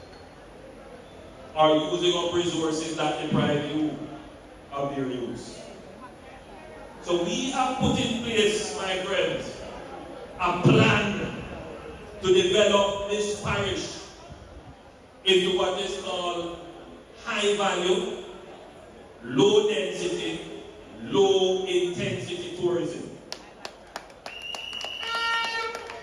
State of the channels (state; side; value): identical; both; correlation 1.00